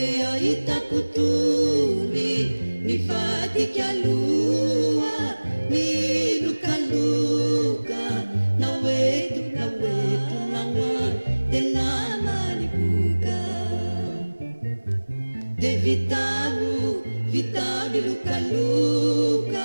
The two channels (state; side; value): inverted; both; correlation -1.00